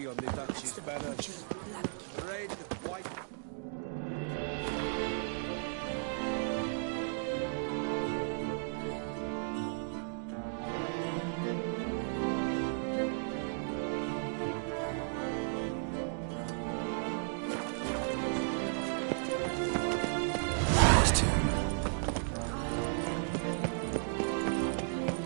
on the Duchy's banner? Red, white...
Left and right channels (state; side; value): silent; left; digital silence